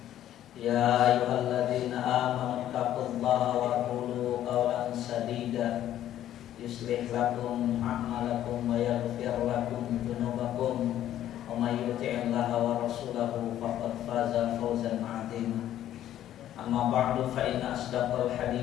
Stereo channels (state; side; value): quieter; right; 12.0 dB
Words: Ya ayyuhalladzina amanu taqullaha wa qulu qawlan sadida yuslih lakum a'malakum wa yaghfir lakum dzunubakum wa may yuti'illaha wa rasulahu faqad faza fawzan 'azima. Amma ba'du fa inna asdaqal